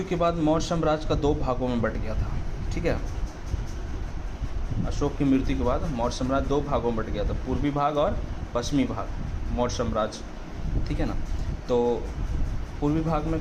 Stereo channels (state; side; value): identical; both; correlation 1.00